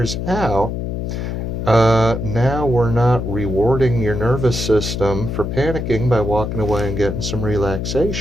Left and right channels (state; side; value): noise; left; hum, 3 dB below the sound